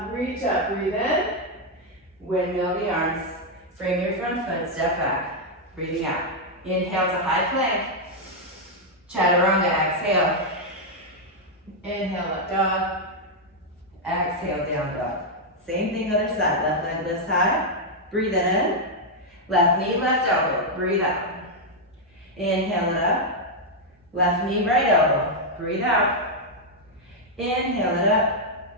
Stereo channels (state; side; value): normal; both; correlation -0.01